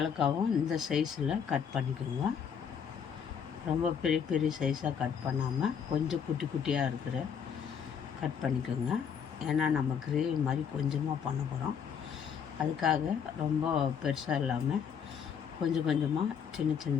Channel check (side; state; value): right; quieter; 7.4 dB